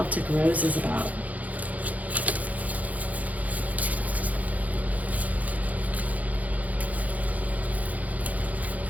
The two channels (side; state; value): left; late; 0.075 ms